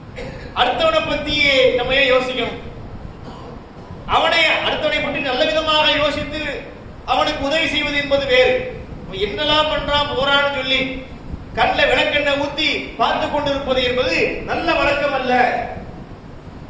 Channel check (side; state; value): both; identical; correlation 1.00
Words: அடுத்தவனை பத்தி நம்ம ஏன் யோசிக்கணும்? அடுத்தவனை பற்றி நல்ல விதமாக யோசித்து அவனுக்கு உதவி செய்வது என்பது வேறு. என்னெல்லாம் பண்றான் போறான்னு சொல்லி கண்ணில் விளக்கெண்ணெய் ஊத்தி பார்த்து கொண்டிருப்பது என்பது நல்ல வழக்கம் அல்ல.